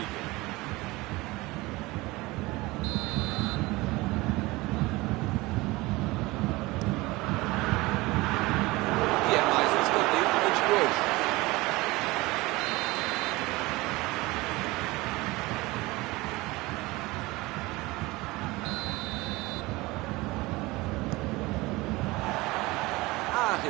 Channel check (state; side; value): quieter; left; 21.4 dB